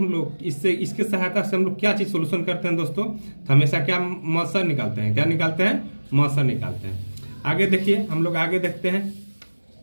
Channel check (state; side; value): inverted; both; correlation -1.00